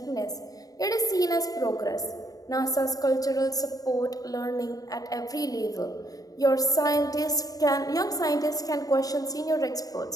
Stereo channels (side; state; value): right; late; 0.18 ms